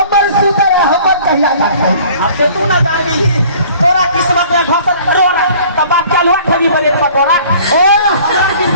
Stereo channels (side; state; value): both; inverted; correlation -0.51